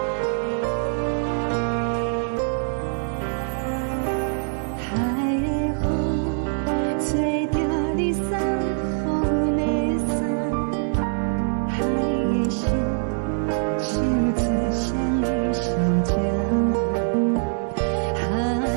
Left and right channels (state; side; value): silent; left; digital silence